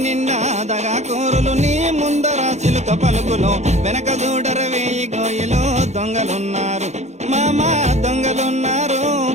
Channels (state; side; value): late; left; 0.33 ms